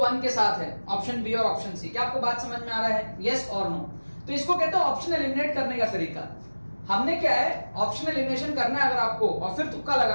के साथ है, ऑप्शन बी और ऑप्शन सी। क्या आपको बात समझ में आ रहा है? यस और नो? तो इसको कहते हैं ऑप्शन एलिमिनेट करने का तरीका। हमने क्या है, ऑप्शन एलिमिनेशन करना है अगर आपको, और फिर तुक्का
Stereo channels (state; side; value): inverted; both; correlation -1.00